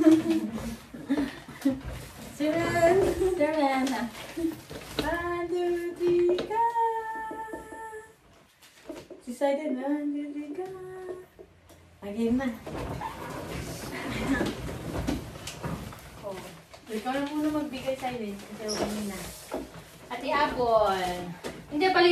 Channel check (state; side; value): identical; both; correlation 1.00